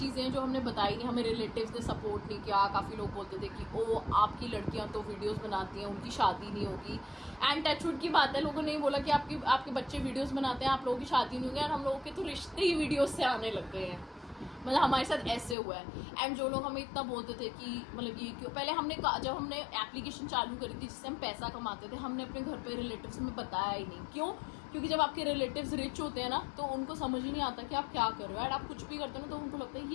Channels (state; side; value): drops out; right; at 15.6 s